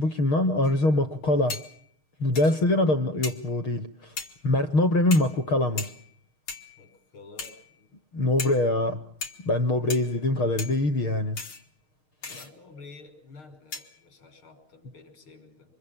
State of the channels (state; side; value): late; right; 6.5 ms